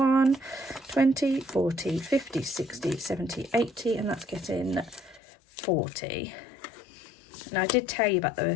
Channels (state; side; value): drops out; right; at 5.2 s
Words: 20, 40, 50, 60, 70, 80, and that's getting 40. Now, I did tell you about